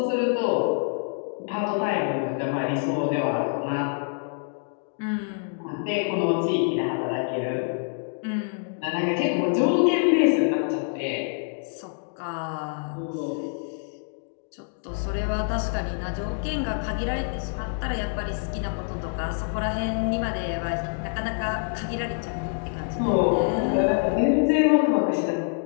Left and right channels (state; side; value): silent; right; 55 dB below the other